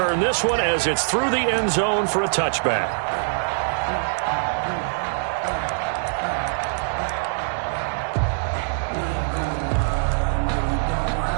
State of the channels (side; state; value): left; silent; digital silence